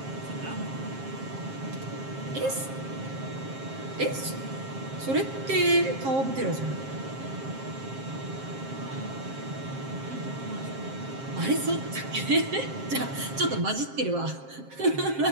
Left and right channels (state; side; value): late; left; 7.5 ms